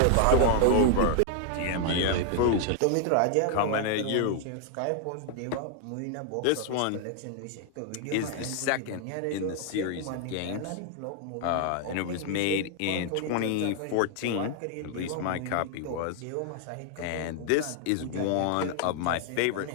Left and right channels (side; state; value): both; different; correlation 0.00